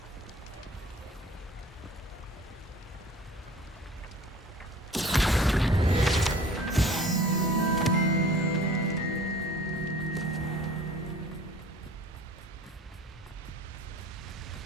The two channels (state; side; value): normal; both; correlation 0.47